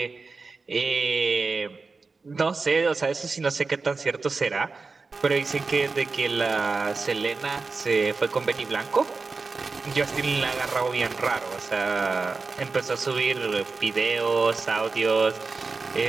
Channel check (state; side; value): quieter; left; 4.2 dB